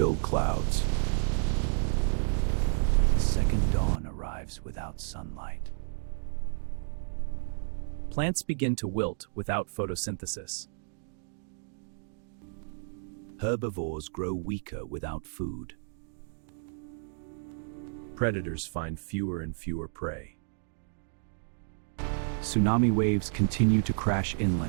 clouds. The second dawn arrives without sunlight. Plants begin to wilt without photosynthesis. Herbivores grow weaker without food. Predators find fewer and fewer prey. Tsunami waves continue to crash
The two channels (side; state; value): left; silent; digital silence